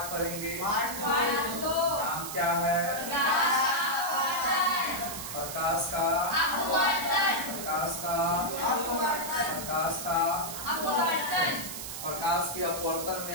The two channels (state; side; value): noise; right; hiss, 7 dB below the sound